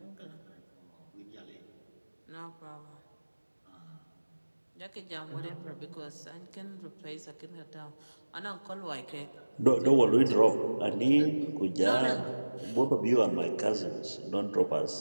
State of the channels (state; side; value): inverted; both; correlation -1.00